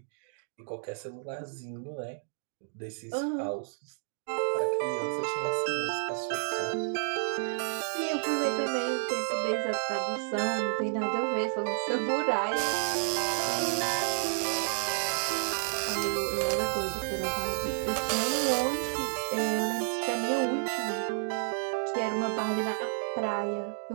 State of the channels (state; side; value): silent; left; digital silence